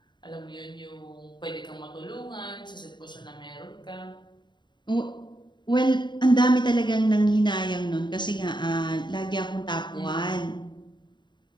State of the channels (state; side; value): late; right; 0.22 ms